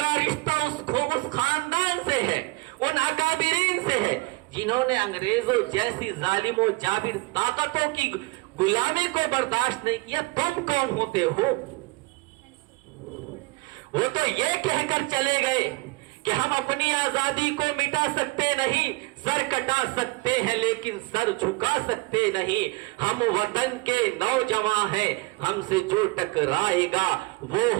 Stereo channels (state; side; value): quieter; left; 24.8 dB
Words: رشتہ اس خاندان سے ہے، ان اکابرین سے ہے جنہوں نے انگریزوں جیسی ظالم و جابر طاقتوں کی غلامی کو برداشت نہیں کیا۔ تم کون ہوتے ہو؟ وہ تو یہ کہہ کر چلے گئے کہ ہم اپنی آزادی کو مٹا سکتے نہیں، سر کٹا سکتے ہیں لیکن سر جھکا سکتے نہیں، ہم وطن کے نوجوان ہیں، ہم سے جو ٹکرائے گا وہ